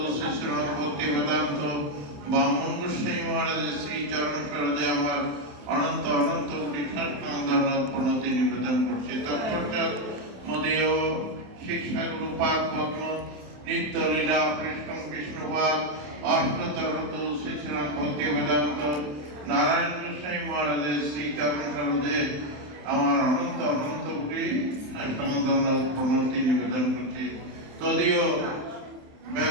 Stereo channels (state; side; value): late; left; 27 ms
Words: শিশুর ভক্তি বেদান্ত বামন গোস্বামী মহারাজের শ্রী চরণ সরোজে আমার অনন্ত অনন্ত কোটি ধন্যবাদ প্রণতি নিবেদন করছি। তৎপশ্চাৎ মদীয় শিক্ষাগুরু পাক পদ্ম নিত্য লীলা কৃষ্ণ বিষ্ণুপাদ অষ্টতরত শিশুরাম ভক্তি বেদান্ত নারায়ণ গোস্বামী মহারাজের শ্রী চরণ সরোজে আমার অনন্ত অনন্ত কোটি ধন্যবাদ প্রণতি নিবেদন করছি। তদীয়